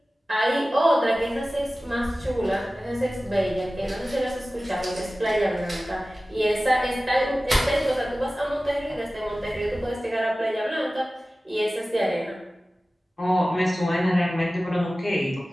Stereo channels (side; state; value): both; normal; correlation 0.96